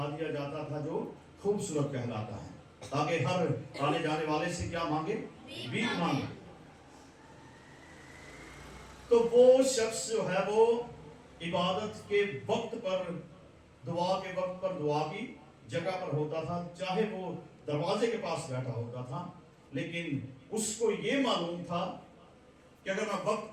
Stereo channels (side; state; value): both; identical; correlation 1.00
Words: دیا جاتا تھا جو خوبصورت کہلاتا ہے، تاکہ ہر آنے جانے والے سے کیا مانگے؟ بھیک مانگے. تو وہ شخص جو ہے وہ عبادت کے وقت پر، دعا کے وقت پر دعا کی جگہ پر ہوتا تھا، چاہے وہ دروازے کے پاس بیٹھا ہوتا تھا، لیکن اس کو یہ معلوم تھا کہ اگر میں وقت